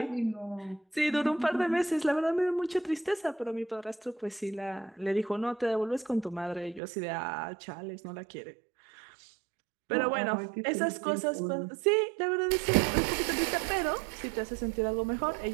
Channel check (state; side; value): drops out; left; at 6.8 s